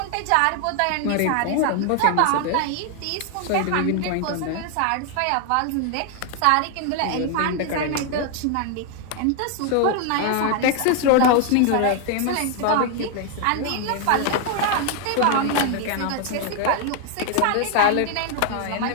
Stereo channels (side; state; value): both; different; correlation 0.00